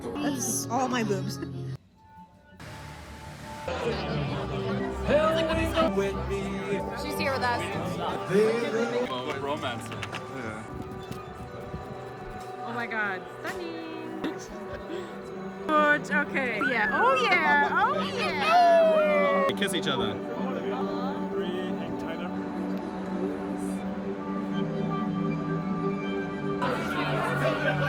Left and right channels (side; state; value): both; identical; correlation 1.00